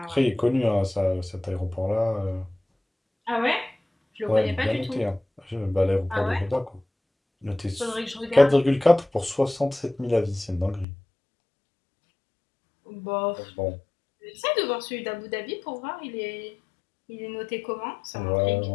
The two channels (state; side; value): drops out; right; at 10.9 s